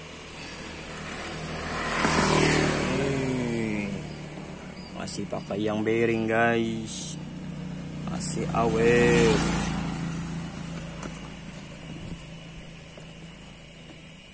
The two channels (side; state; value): both; identical; correlation 1.00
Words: Masih pakai yang bearing guys, masih awet.